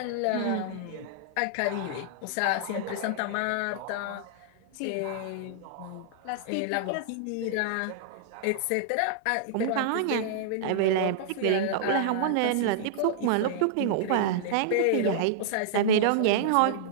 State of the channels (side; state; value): both; different; correlation -0.02